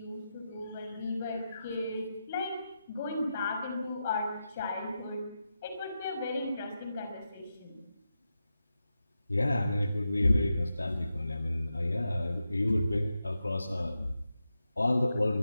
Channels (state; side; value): inverted; both; correlation -0.89